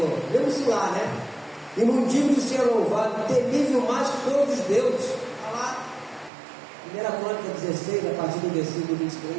Vemos lá, né? E não digo de ser louvado, temível mais que todos os deuses. Está lá, 1 Crônica 16, a partir do versículo 23.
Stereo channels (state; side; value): drops out; left; at 6.3 s